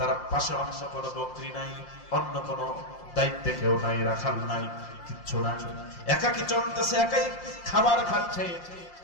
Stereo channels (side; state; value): right; late; 5.7 ms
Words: পাশে অন্য কোনো বকরি নাই, অন্য কোনো দায়িত্বে কেউ নাই, রাখাল নাই, কিচ্ছু নাই, একাকি চলতেছে, একাই খাবার খাচ্ছে।